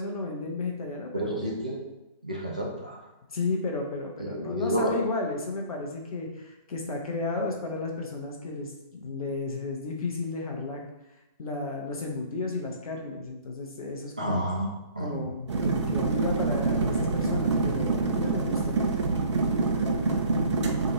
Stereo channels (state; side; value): inverted; both; correlation -0.50